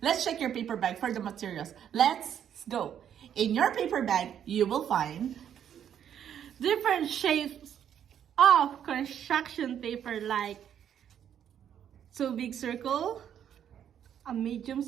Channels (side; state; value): left; quieter; 9.3 dB